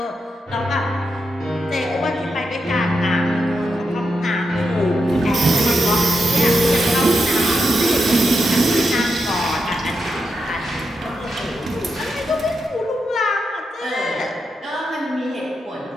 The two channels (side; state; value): both; normal; correlation 0.85